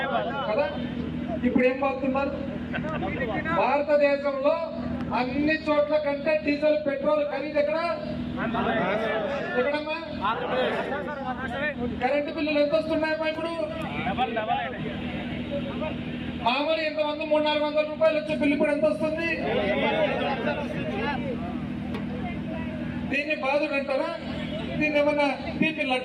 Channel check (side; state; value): both; identical; correlation 1.00